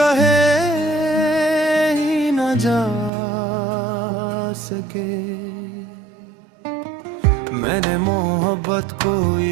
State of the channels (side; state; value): left; drops out; at 3.1 s